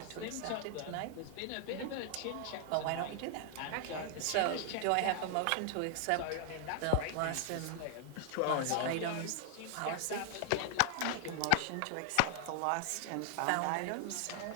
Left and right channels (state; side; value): different; both; correlation 0.00